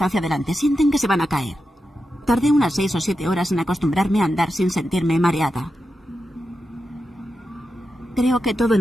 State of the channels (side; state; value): both; normal; correlation 0.89